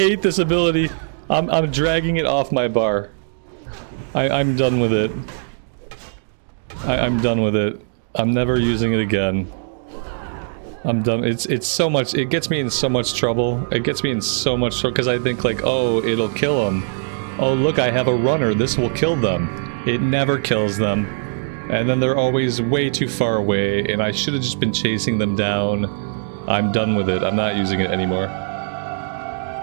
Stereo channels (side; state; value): left; silent; digital silence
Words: this ability. I'm dragging it off my bar. I'm done with it. I'm done with it. I'm never using it again. I'm done. It's so much. It gets me in so much trouble. It gets me in so much trouble because I think like, oh, it'll kill them. Oh, look, I have a runner. This will kill them. It never kills them. And then they're always way too far away, and I should have just been chasing them down. I'm done with it. I'm not using it anymore.